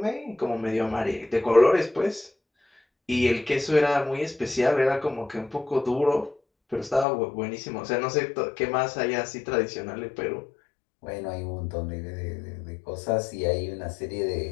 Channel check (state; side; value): drops out; right; at 7.1 s